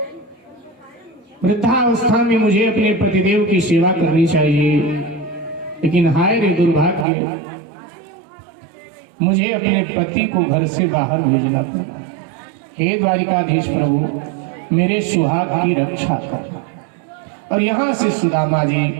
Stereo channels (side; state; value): left; drops out; at 7.1 s